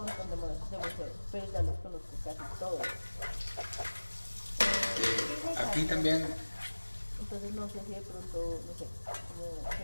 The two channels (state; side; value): inverted; both; correlation -1.00